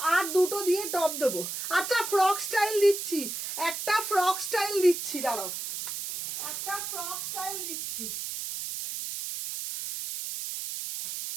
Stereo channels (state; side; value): noise; right; hiss, 5 dB below the sound